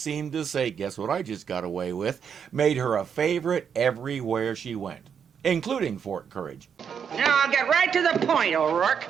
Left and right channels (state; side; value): quieter; left; 7.4 dB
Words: to say, "Guess what I just got away with," made her a favorite everywhere she went, including Fort Courage. Now, I'll get right to the point, O'Rourke.